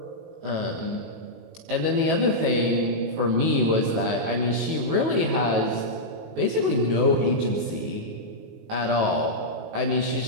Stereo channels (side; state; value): left; late; 18 ms